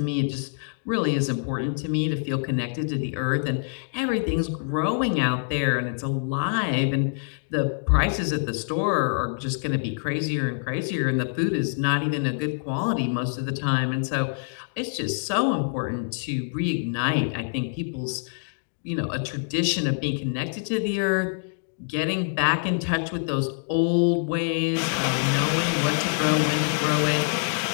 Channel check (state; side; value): silent; right; digital silence